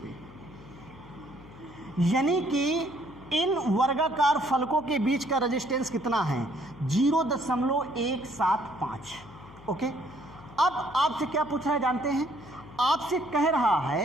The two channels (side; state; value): left; noise; hum, 19 dB below the sound